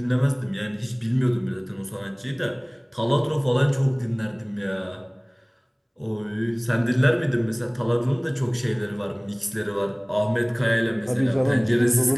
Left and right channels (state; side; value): identical; both; correlation 1.00